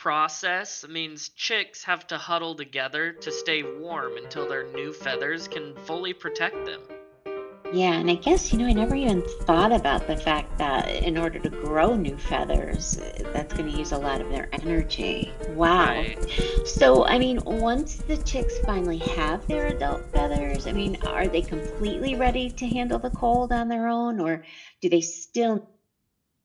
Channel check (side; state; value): both; identical; correlation 1.00